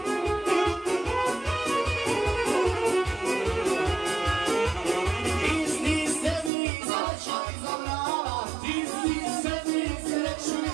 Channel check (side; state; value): left; drops out; at 6.5 s